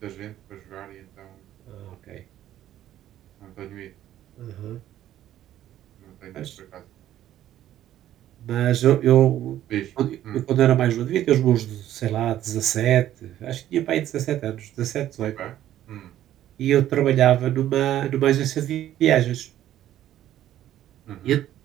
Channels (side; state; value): left; quieter; 12.4 dB